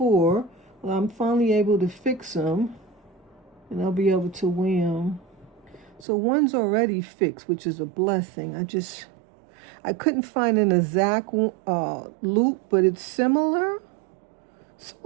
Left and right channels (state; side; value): drops out; left; at 6.1 s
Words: Well, I'm finally able to fix them, and I'll be able to wear them. So one's already fixed, which is a blessing. I couldn't find an exact loop, but it's similar.